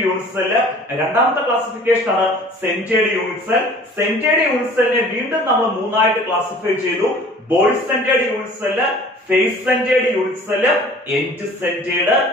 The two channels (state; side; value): normal; both; correlation 0.48